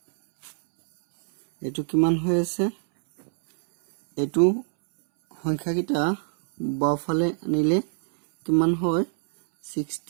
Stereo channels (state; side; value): silent; left; 63 dB below the other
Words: এটো কিমান হৈ আছে এটো সংখ্যাকিটা বাওফালে আনিলে কিমান হয়